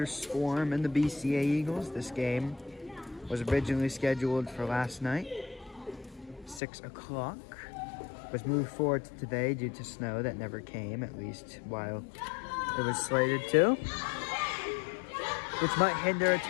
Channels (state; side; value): drops out; right; at 6.6 s